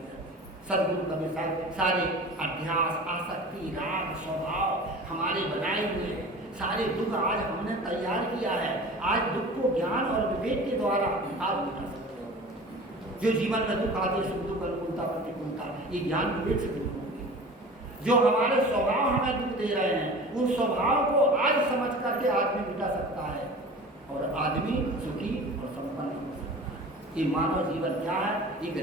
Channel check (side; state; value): both; normal; correlation 0.39